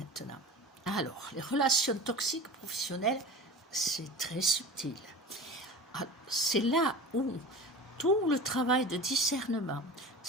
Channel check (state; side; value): normal; both; correlation 0.35